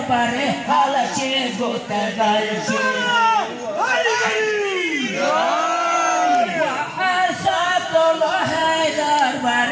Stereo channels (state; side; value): identical; both; correlation 1.00